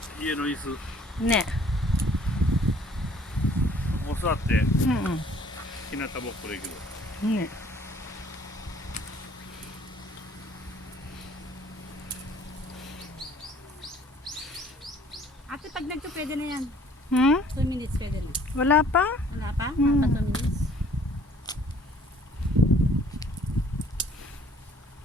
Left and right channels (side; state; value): both; normal; correlation 0.57